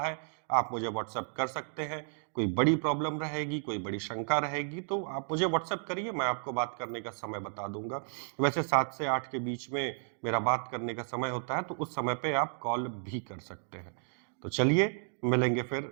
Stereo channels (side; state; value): left; silent; digital silence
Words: आप मुझे व्हाट्सएप कर सकते हैं। कोई बड़ी प्रॉब्लम रहेगी, कोई बड़ी शंका रहेगी तो आप मुझे व्हाट्सएप करिए, मैं आपको बात करने का समय बता दूंगा। वैसे 7 से 8 के बीच में मेरा बात करने का समय होता है, तो उस समय पे आप कॉल भी कर सकते हैं। तो चलिए मिलेंगे